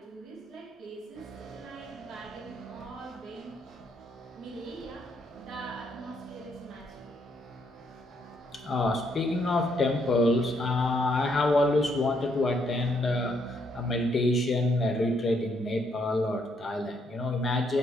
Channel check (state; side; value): normal; both; correlation 0.73